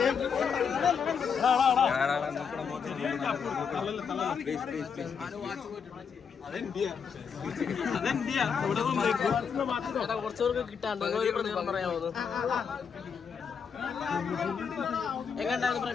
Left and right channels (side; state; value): right; quieter; 6.5 dB